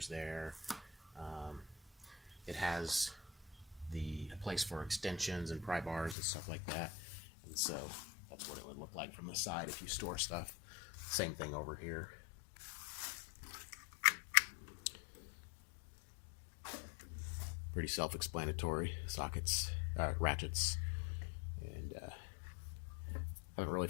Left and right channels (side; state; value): right; drops out; at 6.2 s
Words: there. It has the place for extensions and pry bars and stuff like that, and so that's what it would look like from the side if you store stuff. Same thing over here. Pretty self-explanatory. Sockets, ratchets, and haven't really